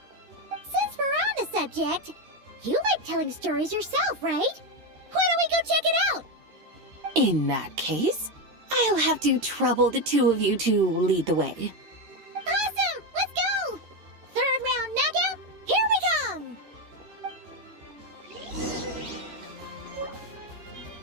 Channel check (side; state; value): left; late; 13 ms